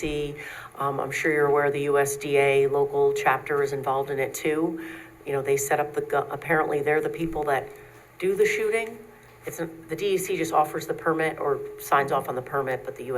I'm sure you're aware the USDA local chapter is involved in it too. You know, they set up apparently they're the people that do the shooting. The DEC just offers the permit or signs off on the permit, but the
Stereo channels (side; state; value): both; identical; correlation 1.00